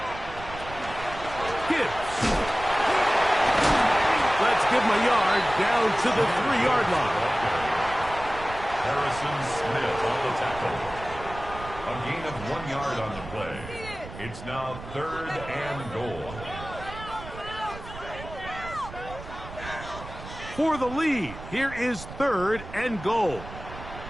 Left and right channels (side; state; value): right; noise; rumble, 13 dB below the sound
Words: Gibbs. Let's give him a yard down to the 3-yard line. Harrison Smith on the tackle. A gain of 1 yard on the play. It's now 3rd and goal. For the lead, here is 3rd and goal.